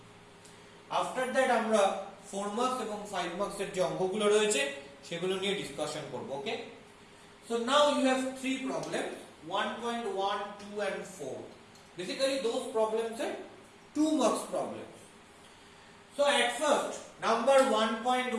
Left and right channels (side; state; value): both; identical; correlation 1.00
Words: আফটার দ্যাট আমরা 4 মার্কস এবং 5 মার্কসের যে অঙ্কগুলো রয়েছে সেগুলো নিয়ে ডিসকাশন করব। ওকে, so now you have 3 problems, 1.1, 2 and 4. Basically those problems are 2 marks problems. So at first, number